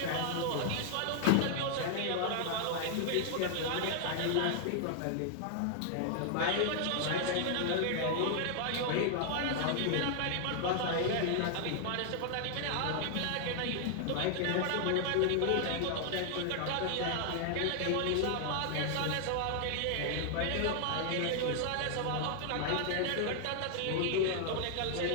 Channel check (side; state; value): both; different; correlation 0.00